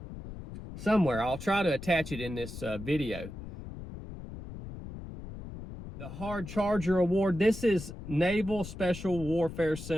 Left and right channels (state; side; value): noise; left; rumble, 11 dB below the sound